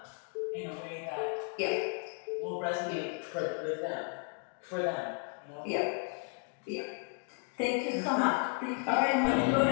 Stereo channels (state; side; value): quieter; right; 38.5 dB